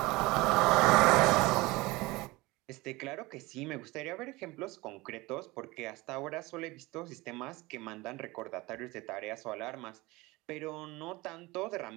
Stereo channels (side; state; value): left; quieter; 21.8 dB